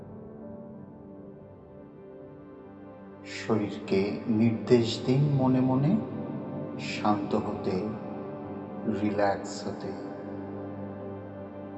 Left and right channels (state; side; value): identical; both; correlation 1.00